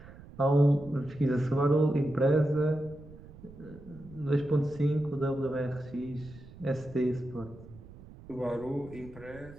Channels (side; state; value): right; noise; rumble, 18 dB below the sound